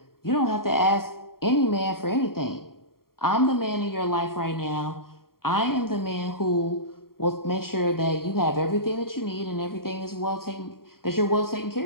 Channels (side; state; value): right; late; 0.93 ms